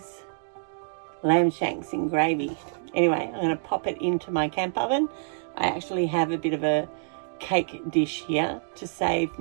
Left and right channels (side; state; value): left; silent; 60 dB below the other